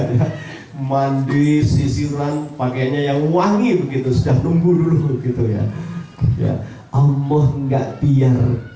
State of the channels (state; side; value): identical; both; correlation 1.00